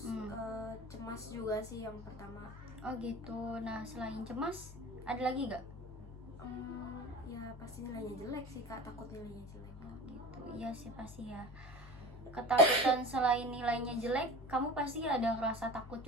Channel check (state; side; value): normal; both; correlation 0.35